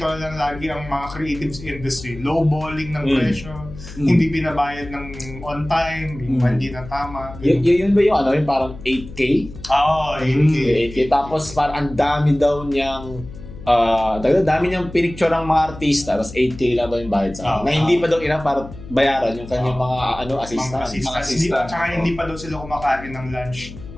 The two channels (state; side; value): noise; left; hum, 14 dB below the sound